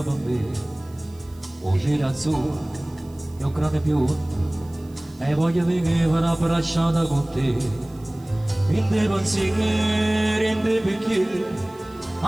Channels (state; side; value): noise; right; hiss, 28 dB below the sound